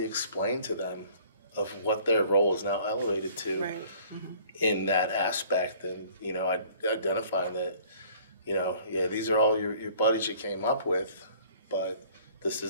explained to them of what their role is now elevated to in that aspect, and identifying that these are all your buddies you came up with, but this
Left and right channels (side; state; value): both; inverted; correlation -0.54